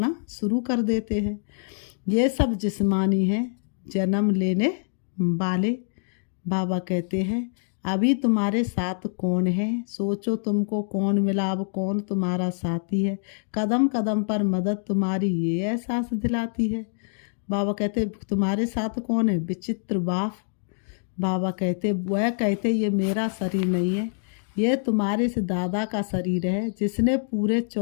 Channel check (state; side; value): silent; right; digital silence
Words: शुरू कर देते हैं। ये सब जिस्मानी है, जन्म लेने वाले। बाबा कहते हैं अभी तुम्हारे साथ कौन है? सोचो तुमको कौन मिला, अब कौन तुम्हारा साथी है? कदम कदम पर मदद तुम्हारी ये एहसास दिलाती है। बाबा कहते तुम्हारे साथ कौन है? विचित्र बाप। बाबा कहते वह कहते ये मेरा शरीर नहीं है, ये तुम्हारे से दादा का शरीर है जिसने पूरे